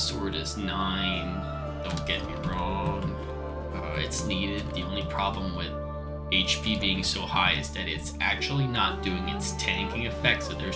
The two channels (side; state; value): both; identical; correlation 1.00